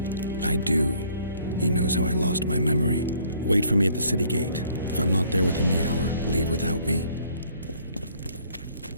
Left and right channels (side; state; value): both; inverted; correlation -0.61